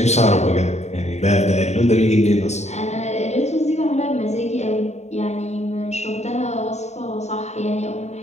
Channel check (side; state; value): right; late; 0.32 ms